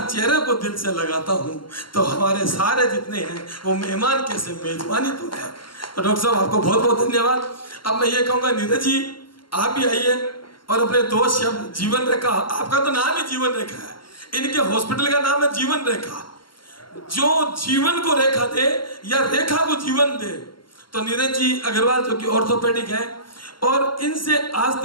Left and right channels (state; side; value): late; right; 0.72 ms